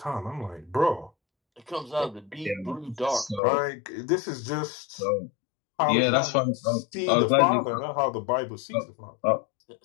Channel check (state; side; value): drops out; right; at 3.4 s